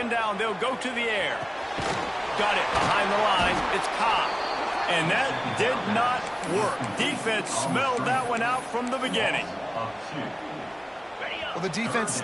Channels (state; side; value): identical; both; correlation 1.00